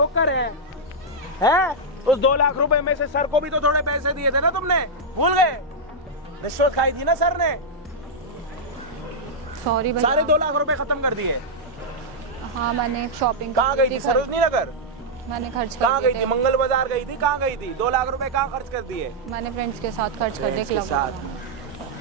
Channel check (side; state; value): both; normal; correlation -0.05